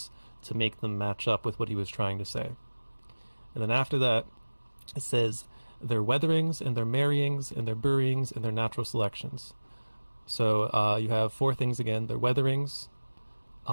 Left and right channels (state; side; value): inverted; both; correlation -1.00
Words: to make them match up with what he was trying to say. And then after that, it says their weatherings and their marryings and their buryings and their natural selections. So you have 4 things again. Their weatherings.